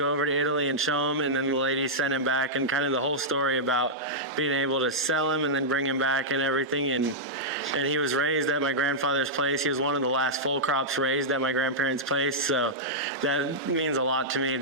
over to Italy and show him. And then the lady sent him back, and kind of the whole story about being able to sell him and then bring him back and everything. And he was raised at my grandfather's place. He was one of the last full crops raised at my grandparents' place. So that means a lot to me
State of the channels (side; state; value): both; normal; correlation -0.09